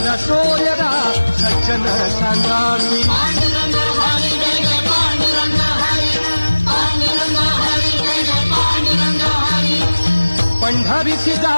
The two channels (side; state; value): both; inverted; correlation -1.00